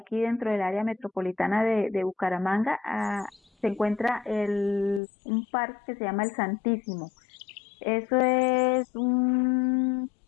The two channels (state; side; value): drops out; right; at 5.0 s